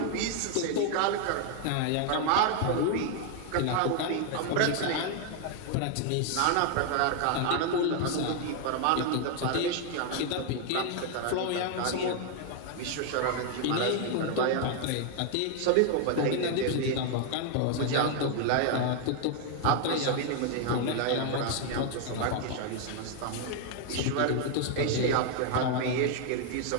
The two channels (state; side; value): different; both; correlation 0.00